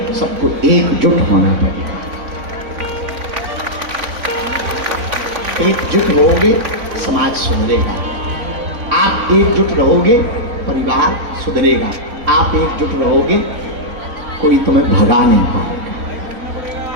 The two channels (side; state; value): left; late; 4.0 ms